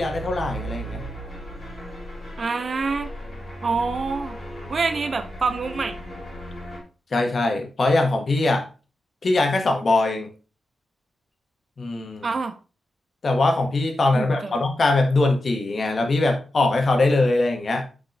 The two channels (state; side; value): normal; both; correlation 0.89